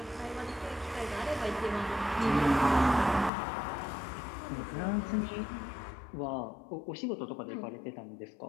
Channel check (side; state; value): right; drops out; at 3.3 s